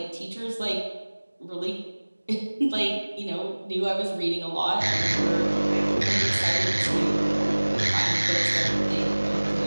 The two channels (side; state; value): both; inverted; correlation -1.00